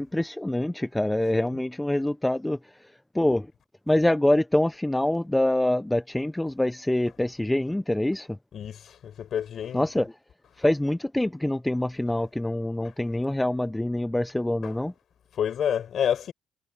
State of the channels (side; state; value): both; normal; correlation 0.98